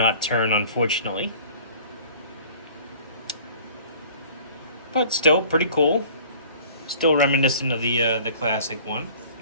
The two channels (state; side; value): inverted; both; correlation -0.49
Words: turn, unfortunately. But still pretty cool. Still reminiscent of the classic one,